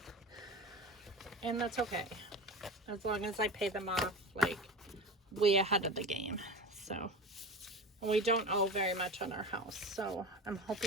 and that's okay as long as I pay them off like way ahead of the game. So, and we don't owe very much on our house, so I'm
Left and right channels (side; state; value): both; normal; correlation 0.30